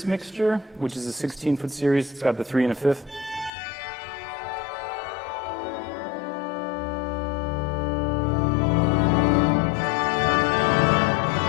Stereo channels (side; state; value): right; drops out; at 3.5 s